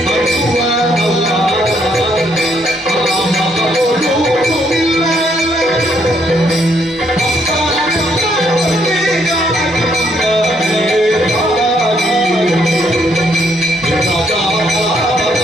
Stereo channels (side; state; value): both; normal; correlation 0.71